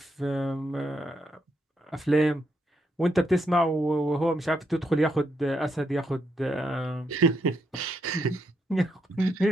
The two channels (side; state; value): both; normal; correlation 0.78